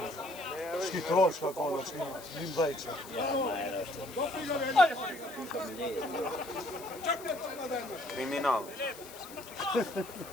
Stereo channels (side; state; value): left; noise; hiss, 16 dB below the sound